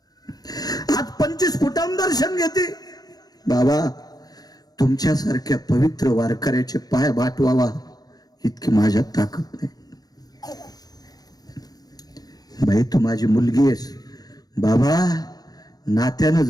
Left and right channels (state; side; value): late; right; 0.19 ms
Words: आज 25 फुटांवर दर्शन घेते. बाबा तुमच्यासारख्या पवित्र वारकऱ्याचे पाय बाटवावा इतकी माझ्यात ताकद नाही. बाई तू माझी मुलगी आहेस. बाबा नात्यानं